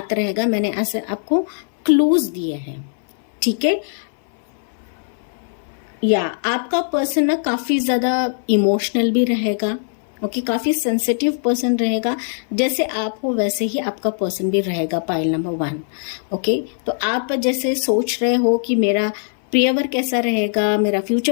रहेगा, मैंने ऐसे आपको क्लूज दिए हैं। ठीक है, या आपका पर्सन ना काफी ज्यादा इमोशनल भी रहेगा। ओके, काफी सेंसिटिव पर्सन रहेगा, जैसे आप हो वैसे ही आपका पर्सन भी रहेगा। Pile number 1। ओके, तो आप जैसे सोच रहे हो कि मेरा प्रियवर कैसा रहेगा, मेरा फ्यूचर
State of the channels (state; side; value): silent; right; 58 dB below the other